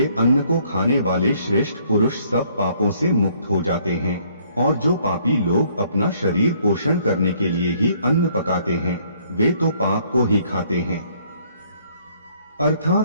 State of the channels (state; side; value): inverted; both; correlation -0.64